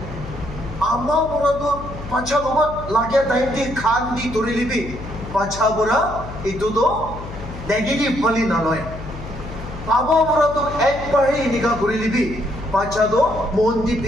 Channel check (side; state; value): left; noise; hum, 11 dB below the sound